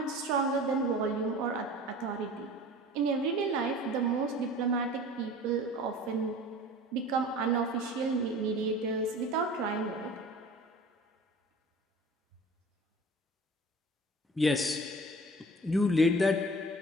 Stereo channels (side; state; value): both; normal; correlation 0.41